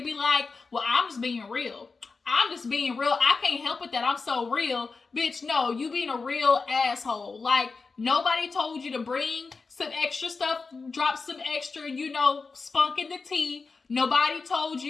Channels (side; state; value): right; quieter; 4.4 dB